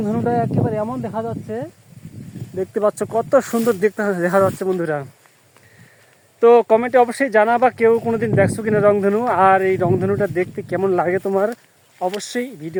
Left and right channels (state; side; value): identical; both; correlation 1.00